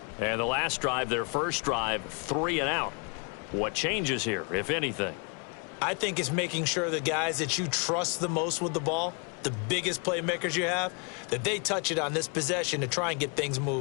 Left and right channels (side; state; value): right; quieter; 35.4 dB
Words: And the last drive, their first drive, 3 and out. What changes here, if anything? I think it's making sure the guys that you trust the most with the ball, the biggest playmakers you have, that they touch it on this possession to try and get things